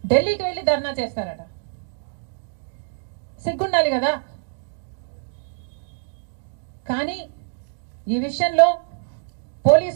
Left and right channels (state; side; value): silent; left; digital silence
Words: ఢిల్లీకి వెళ్ళి ధర్నా చేస్తారట. సిగ్గుండాలి కదా. కానీ ఈ విషయంలో